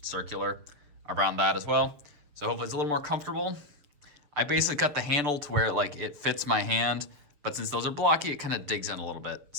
circular around that as well. So hopefully it's a little more comfortable. I basically cut the handle to where like it fits my hand, but since those are blocky, it kind of digs in a little bit.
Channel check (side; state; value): left; late; 6.9 ms